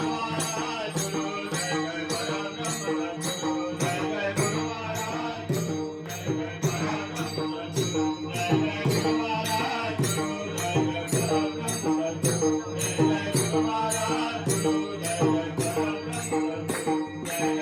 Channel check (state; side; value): identical; both; correlation 1.00